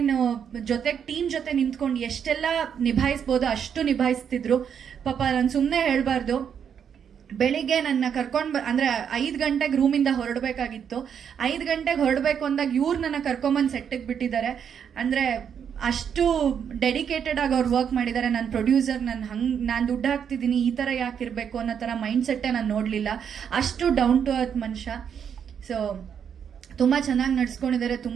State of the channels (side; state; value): left; quieter; 7.8 dB